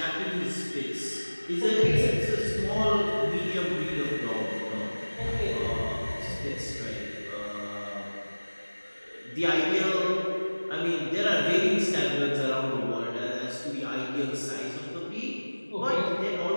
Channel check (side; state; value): both; inverted; correlation -1.00